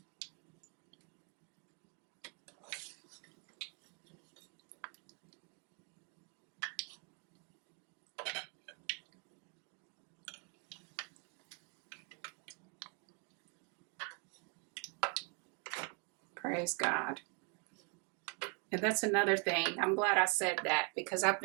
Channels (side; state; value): left; quieter; 34.9 dB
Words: Praise God. And that's another thing. I'm glad I said that because I've